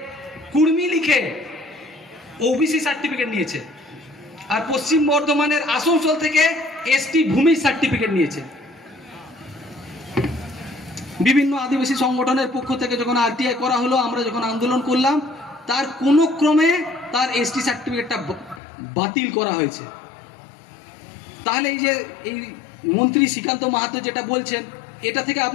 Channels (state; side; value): drops out; right; at 18.6 s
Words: কুর্মী লিখে ওবিসি সার্টিফিকেট নিয়েছে, আর পশ্চিম বর্ধমানের আসানসোল থেকে এসটি ভূমি সার্টিফিকেট নিয়েছে। বিভিন্ন আদিবাসী সংগঠনের পক্ষ থেকে যখন আরটিআই করা হলো, আমরা যখন আন্দোলন করলাম, তার কোনো ক্রমে তার এসটি সার্টিফিকেটটা বাতিল করা হয়েছে। তাহলে এই যে এই মন্ত্রী শ্রীকান্ত মাহাতো যেটা বলছেন, এটা থেকে